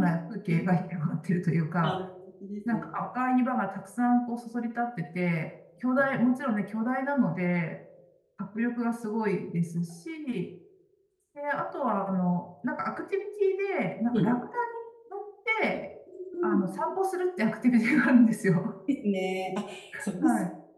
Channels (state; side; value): identical; both; correlation 1.00